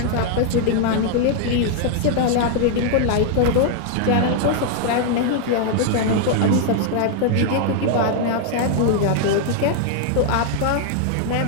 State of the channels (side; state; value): both; different; correlation 0.00